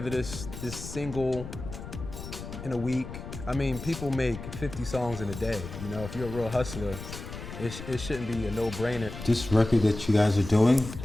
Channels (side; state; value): left; noise; rumble, 10 dB below the sound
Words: this single in a week. I mean, people make 50 songs in a day. You know, if you're a real hustler, it shouldn't be a no-brainer. This record that you guys are doing